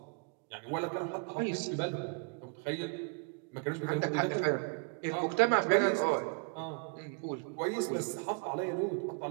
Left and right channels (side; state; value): left; quieter; 34.7 dB